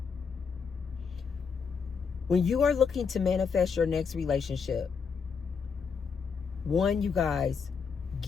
When you are looking to manifest your next relationship, one, you guys,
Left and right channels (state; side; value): quieter; right; 5.8 dB